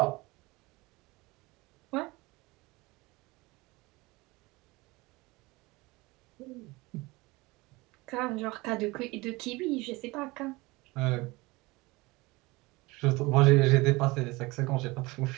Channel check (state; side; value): quieter; left; 22.7 dB